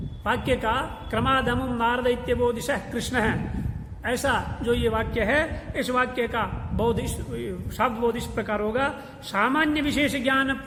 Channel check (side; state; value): both; identical; correlation 1.00